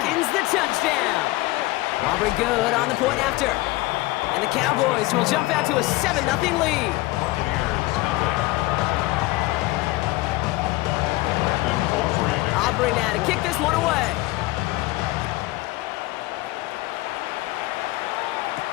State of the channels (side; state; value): right; quieter; 20.1 dB